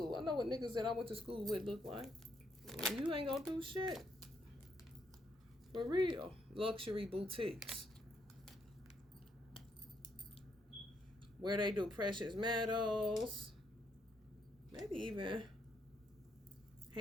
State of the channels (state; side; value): normal; both; correlation 0.74